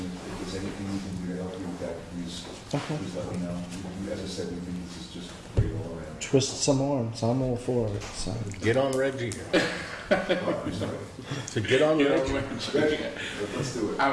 if there's anything we can do to help you with that, please let me know. As I said, we think this is just great all around. Twist some arms. I'm all for it. So. Get on Reggie here. So get on Reggie. Let's do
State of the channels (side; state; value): both; identical; correlation 1.00